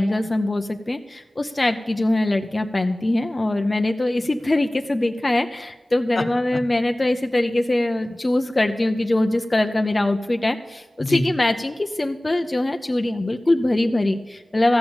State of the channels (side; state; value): both; normal; correlation 0.98